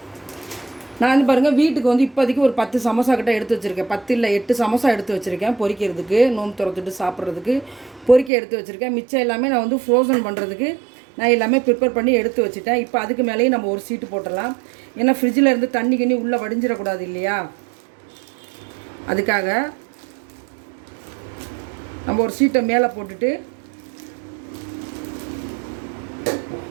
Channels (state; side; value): drops out; left; at 8.3 s